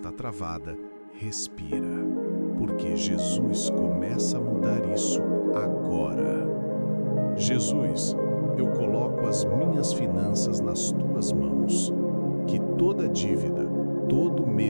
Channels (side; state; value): both; inverted; correlation -1.00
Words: travada, respira, porque Jesus começa a mudar isso agora. Jesus, eu coloco as minhas finanças nas tuas mãos. Que toda dívida, todo